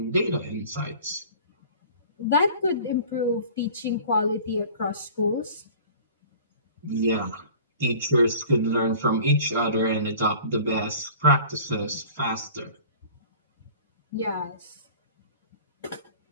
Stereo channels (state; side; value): inverted; both; correlation -0.46